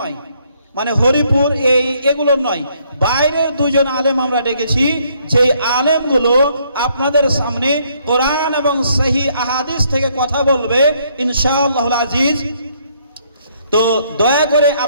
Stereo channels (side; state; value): both; inverted; correlation -0.69